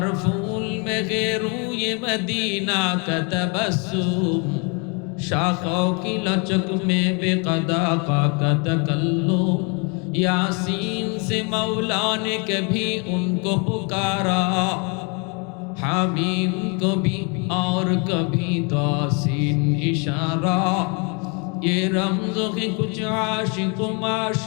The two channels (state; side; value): quieter; right; 33.9 dB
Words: फूल में रूए मदीना का तबस्सुम शाखों की लचक में बेक़दा का तकल्लुम यासीन से मौला ने कभी उनको पुकारा हामीम को भी और कभी तासीन इशारा ये रमज़ों के कुछ आशिक